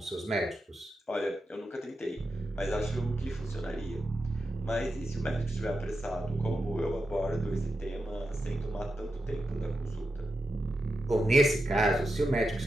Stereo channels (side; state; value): both; normal; correlation 0.88